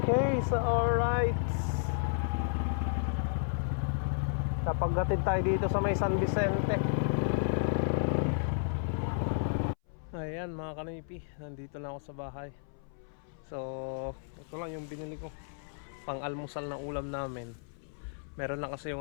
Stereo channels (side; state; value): right; silent; 56 dB below the other